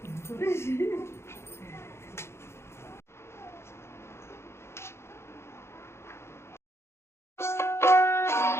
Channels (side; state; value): right; late; 0.13 ms